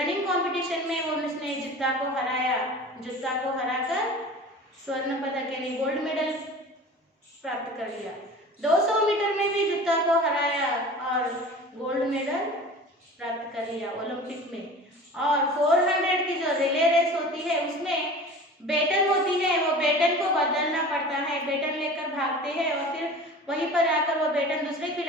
कंपटीशन में वो उसने जुत्ता को हराया। जुत्ता को हराकर स्वर्ण पदक यानी गोल्ड मेडल प्राप्त कर लिया। 200 मीटर में भी जुत्ता को हराया और गोल्ड मेडल प्राप्त कर लिया ओलंपिक में। और 400 की जो रिले रेस होती है, उसमें बेटन होती है, वो बेटन को बदलना पड़ता है। बेटन लेकर भागते हैं और फिर वहीं पर आकर वो बेटन दूसरे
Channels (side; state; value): both; normal; correlation 0.39